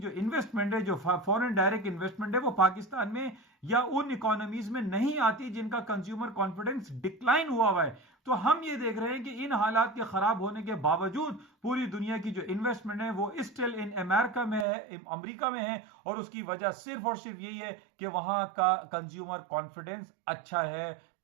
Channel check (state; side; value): drops out; left; at 14.7 s